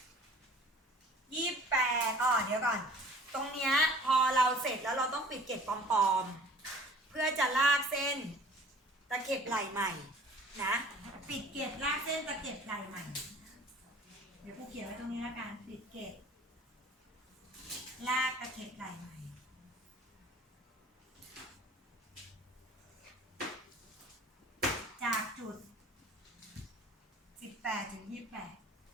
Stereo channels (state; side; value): normal; both; correlation 0.49